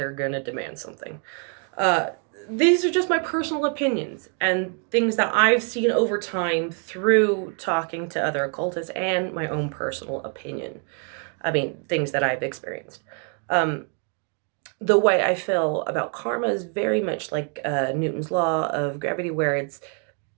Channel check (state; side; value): quieter; left; 39.1 dB